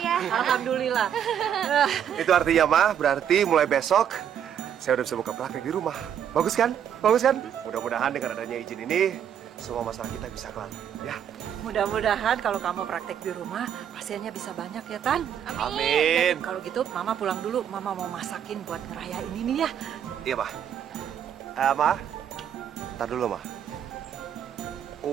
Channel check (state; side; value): quieter; left; 9.2 dB